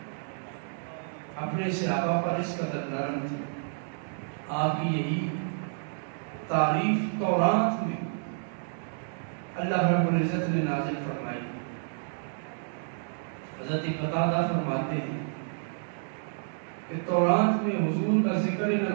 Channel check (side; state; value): left; silent; digital silence